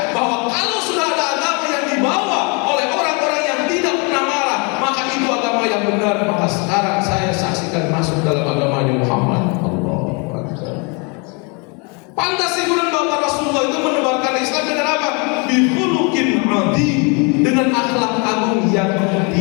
bahwa kalau sudah ada agama yang dibawa oleh orang-orang yang tidak pernah marah, maka itu agama yang benar. Maka sekarang saya saksikan masuk dalam agamanya Muhammad. Pantas ibu dan bapak Rasulullah itu menebarkan Islam dengan apa? Bihulukin adi, dengan akhlak agung yang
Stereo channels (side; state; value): right; quieter; 32.6 dB